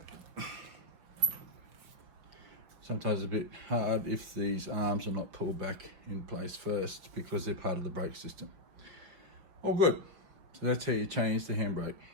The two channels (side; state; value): left; late; 5.3 ms